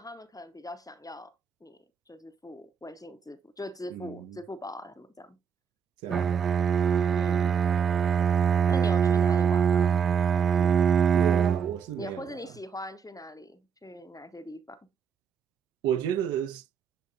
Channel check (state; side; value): quieter; left; 7.2 dB